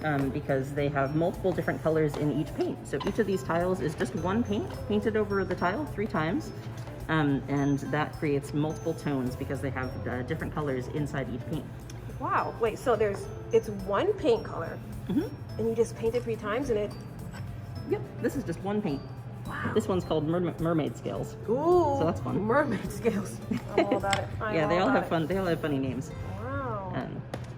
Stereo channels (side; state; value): both; identical; correlation 1.00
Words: because they have multiple different colors in each paint. So each of these tiles is just one paint painted over the tile 3 times. And that creates multiple tones because they have different colors inside each paint. Wow, wait, so it's one paint color, and you just paint it 3 times and it... Yep, this is just one paint. Wow. This one's called mermaid scales. Ooh, so that's fun. Mermaid scales. I'm all about it. Yeah, they all have fun. They all have funny names. Wow.